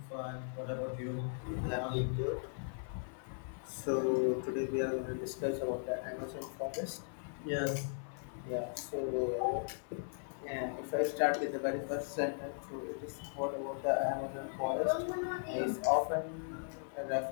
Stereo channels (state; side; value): silent; right; 53 dB below the other